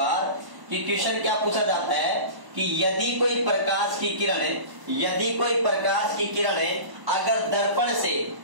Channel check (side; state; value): left; late; 1.0 ms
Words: कि क्वेश्चन क्या पूछा जाता है कि यदि कोई प्रकाश की किरण अगर